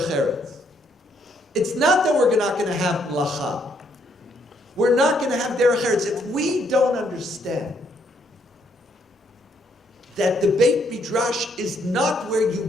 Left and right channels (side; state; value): both; normal; correlation 0.71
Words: Eretz. It's not that we're not going to have Melacha. We're not going to have Derech Eretz if we don't understand that the Beit Midrash is not where you